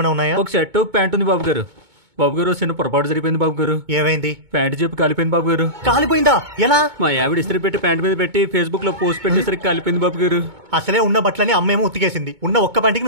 ఉన్నాయా? ఒక షర్ట్ ఒక ప్యాంట్ ఉంది బాబు గారు. బాబు గారు, చిన్న పొరపాటు జరిపోయింది బాబు గారు. ఏమైంది? ప్యాంట్ చెప్పి కాలిపోయింది బాబు గారు. కాలిపోయిందా? ఎలా? మా ఆవిడ ఇస్త్రీ పెట్టి ప్యాంట్ మీద పెట్టి ఫేస్బుక్ లో పోస్ట్ పెట్టేసరికి కాలిపోయింది బాబు గారు. అసలే ఉన్న బట్టలని అమ్మేమో ఉతికేసింది. ఉన్న ఒక్క పంటికి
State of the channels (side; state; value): left; late; 2.2 ms